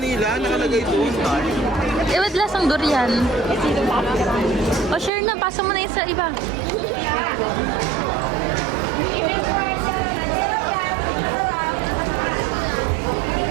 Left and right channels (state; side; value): drops out; left; at 5.1 s